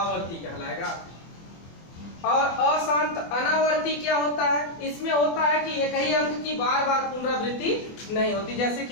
कहलाएगा। और अशांत अनावर्ती क्या होता है, इसमें होता है कि एक ही अंक की बार बार पुनरावृत्ति नहीं होती। जैसे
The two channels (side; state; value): right; late; 24 ms